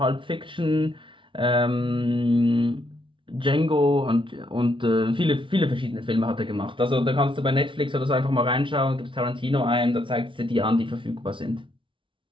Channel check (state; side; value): late; left; 0.25 ms